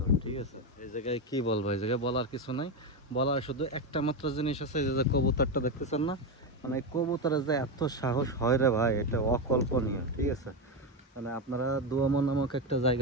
ঠিক আছে, এই জায়গায় কি বলবো, এই জায়গায় বলার কিছু নাই। বলার শুধু একটা মাত্র জিনিস আছে, এই যে কবুতরটা দেখতেছেন না, মানে এই কবুতরের যে এত সাহস হয় রে ভাই, এটা অকল্পনীয়। ঠিক আছে, মানে আপনারা দুয়ামো নামক একটা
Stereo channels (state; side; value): normal; both; correlation 0.11